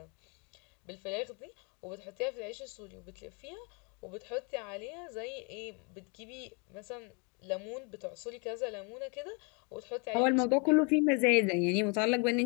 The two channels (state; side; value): quieter; right; 34.1 dB